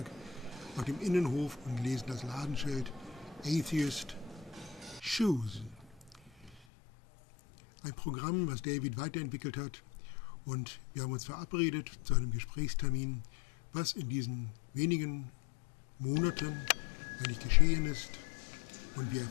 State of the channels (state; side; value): drops out; right; at 6.6 s